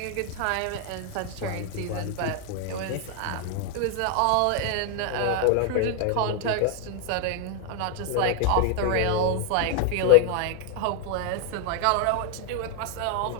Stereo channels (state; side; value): different; both; correlation 0.00